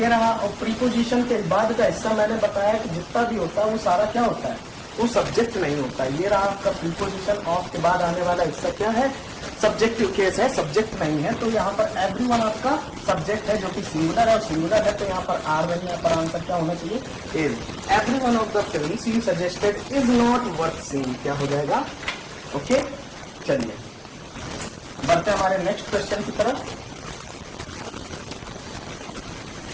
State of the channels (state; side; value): identical; both; correlation 1.00